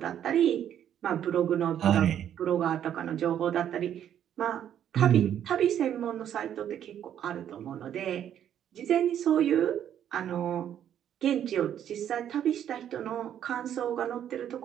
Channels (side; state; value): left; quieter; 10.0 dB